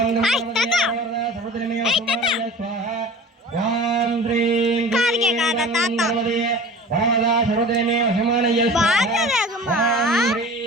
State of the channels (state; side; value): normal; both; correlation 0.39